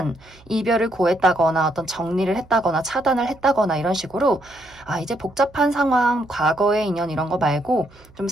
이별을 고했다거나 어떤 정리를 했다거나 차단을 했다거나 이런 식으로 이제 복잡한 상황, 과거의 인연 이런 거 말고 좀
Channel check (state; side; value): noise; right; hum, 26 dB below the sound